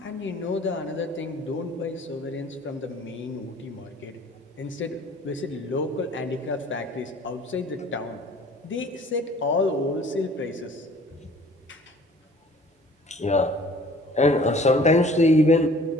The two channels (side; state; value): both; normal; correlation 0.51